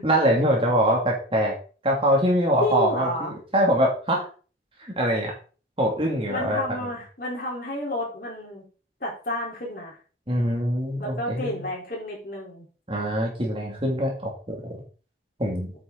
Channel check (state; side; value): normal; both; correlation 0.31